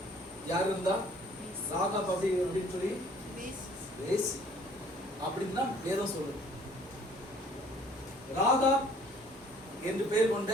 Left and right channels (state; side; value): normal; both; correlation 0.56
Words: யாரு இருந்தா? ராகாப் அப்படின்னு சொல்லி வேசி அப்படின்னு தான் வேதம் சொல்லுது. ராகாப் என்று பெயர் கொண்ட